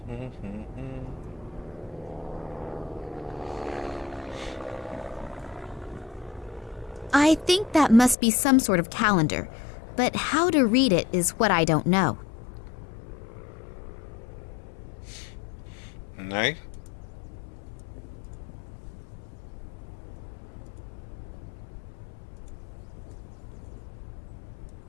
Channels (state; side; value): drops out; right; at 8.2 s